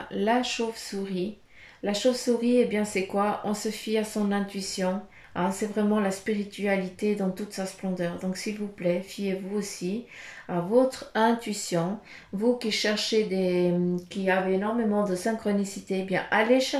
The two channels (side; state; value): both; identical; correlation 1.00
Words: la chauve-souris. La chauve-souris, eh bien, c'est quoi? On se fie à son intuition. Hein, c'est vraiment la spiritualité dans toute sa splendeur. Donc, s'il vous plaît, fiez-vous aussi à votre intuition. Vous qui cherchez qui avez énormément de synchronicité, eh bien, allez